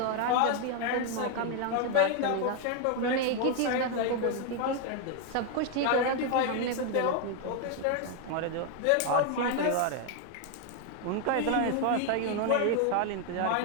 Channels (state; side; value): different; both; correlation 0.01